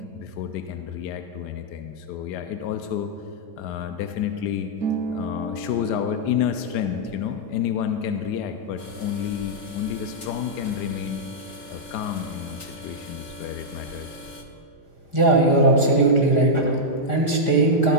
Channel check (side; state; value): right; late; 4.9 ms